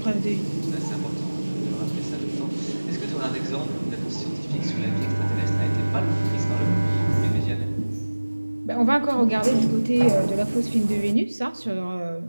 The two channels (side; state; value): both; inverted; correlation -1.00